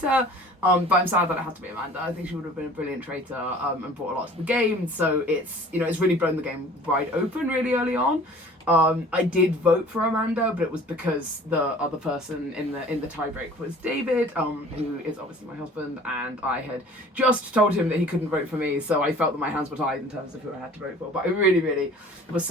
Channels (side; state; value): both; normal; correlation 0.48